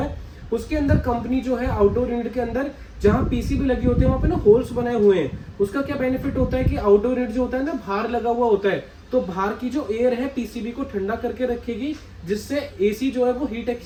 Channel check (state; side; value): identical; both; correlation 1.00